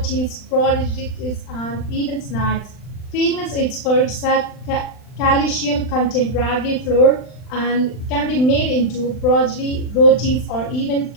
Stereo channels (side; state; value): right; late; 39 ms